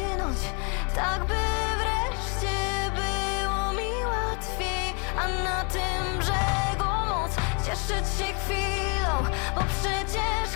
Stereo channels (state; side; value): quieter; right; 36.0 dB